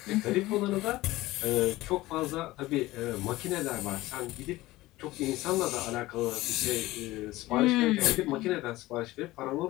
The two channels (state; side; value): quieter; right; 18.1 dB